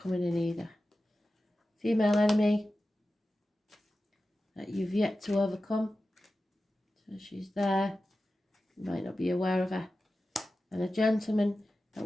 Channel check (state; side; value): normal; both; correlation 0.94